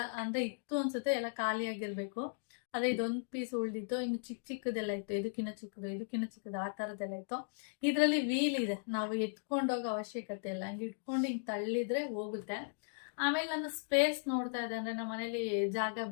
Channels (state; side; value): silent; right; digital silence